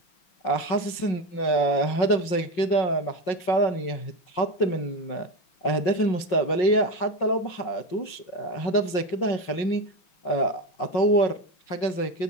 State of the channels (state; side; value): late; right; 5.5 ms